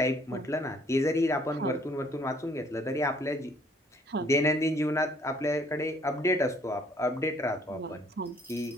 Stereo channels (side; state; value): both; normal; correlation 0.61